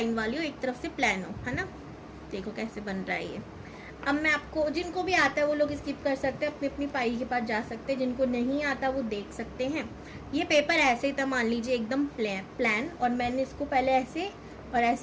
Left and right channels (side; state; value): both; identical; correlation 1.00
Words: वाली हो, एक तरफ से प्लान हो, है ना। देखो कैसे बन रहा है ये। अब मैं आपको, जिनको भी आता है वो लोग स्किप कर सकते हैं, अपनी फाइल के पास जा सकते हैं, जिनको नहीं आता वो देख सकते हैं। ये पेपर ऐसे ही था, मान लीजिए एकदम प्लान, और मैंने इसको पहले ऐसे और